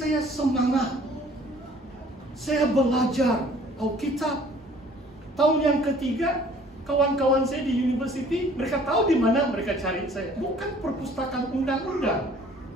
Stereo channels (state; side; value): normal; both; correlation 0.54